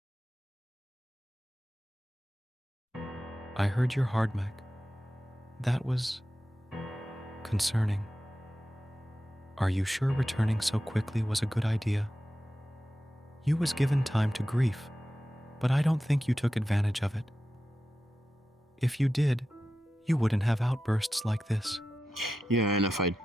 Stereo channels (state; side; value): normal; both; correlation 0.92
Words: I heard your hard Mac. That was concerning. Are you sure returning so quickly was a good idea? You was given time to grief, but I don't think you took advantage of it. If you did, you wouldn't have outbursts like this. Yeah, and if I